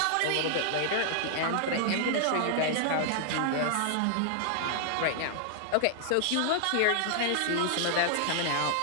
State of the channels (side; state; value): both; different; correlation -0.01